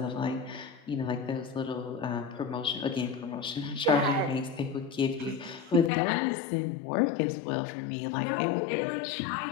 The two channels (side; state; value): right; drops out; at 5.9 s